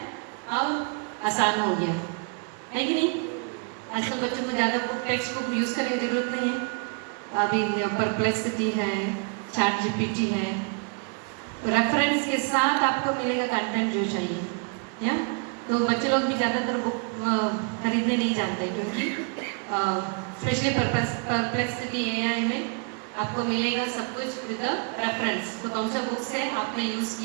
और आसान हो गया है कि नहीं। आजकल बच्चों को ज़्यादा बुक टेक्स्ट बुक यूज़ करने की ज़रूरत नहीं है। अभी परप्लेक्सिटी है, ChatGPT है, रेफरेंस के साथ आपको मिलेगा कंटेंट जो चाहिए या। तो बच्चे लोग भी ज़्यादातर बुक खरीदने नहीं जाते, क्योंकि स्पेशली परप्लेक्सिटी AI में आपको मिलेगा सब कुछ विद रेफरेंस। तो कौन सा बुक्स है आपने यूज़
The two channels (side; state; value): left; quieter; 39.2 dB